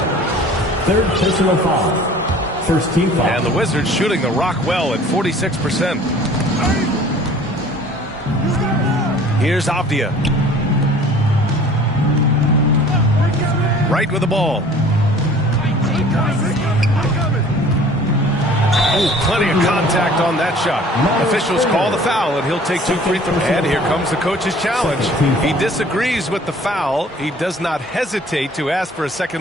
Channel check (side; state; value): both; normal; correlation 0.49